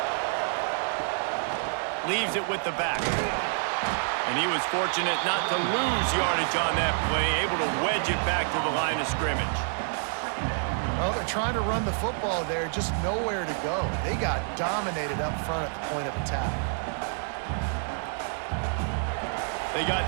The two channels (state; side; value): silent; left; 57 dB below the other